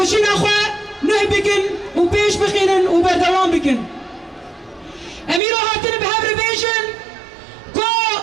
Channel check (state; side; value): drops out; left; at 5.4 s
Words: اخوة نه بكن و بيش بخينن و بردوان بكن اميرو هاتن بهبر بيجن كو